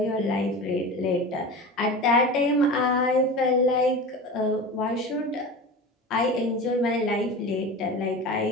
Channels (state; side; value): normal; both; correlation 0.30